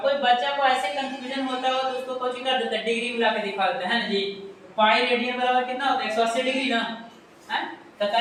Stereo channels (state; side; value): identical; both; correlation 1.00